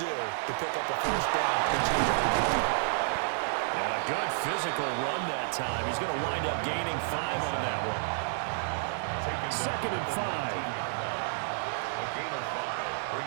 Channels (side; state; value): left; silent; digital silence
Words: do to pick up a first down? And a good physical run that time. He's going to wind up gaining 5 on that one. 2nd and 5. A gain of 5